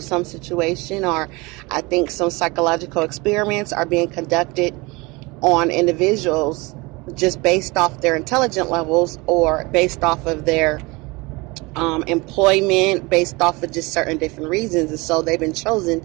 situation, or I think some psychological experiments are being conducted on individuals just based off their intelligence levels or based off of their employment, based off of just certain different reasons. And so they've been chosen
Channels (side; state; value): left; quieter; 24.9 dB